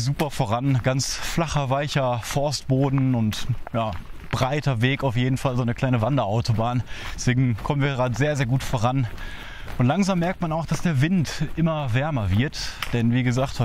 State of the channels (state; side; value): identical; both; correlation 1.00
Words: super voran. Ganz flacher, weicher Forstboden und ja, breiter Weg auf jeden Fall, so eine kleine Wanderautobahn. Deswegen kommen wir gerade sehr, sehr gut voran. Und langsam merkt man auch, dass der Wind immer wärmer wird. Denn wie gesagt,